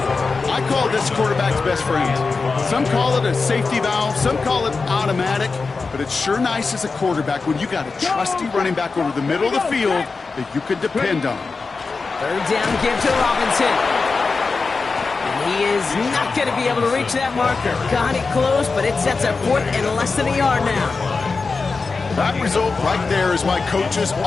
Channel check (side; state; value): right; quieter; 4.3 dB